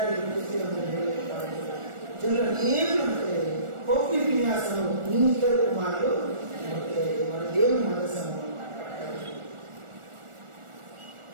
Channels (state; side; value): late; left; 1.4 ms